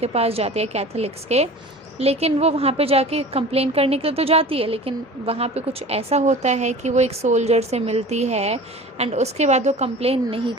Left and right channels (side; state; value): both; normal; correlation 0.39